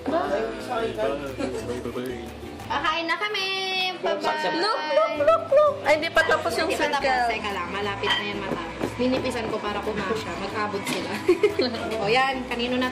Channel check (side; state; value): both; identical; correlation 1.00